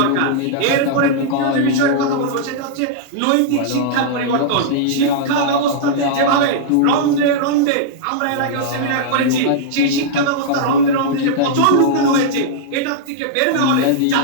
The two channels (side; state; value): both; different; correlation -0.02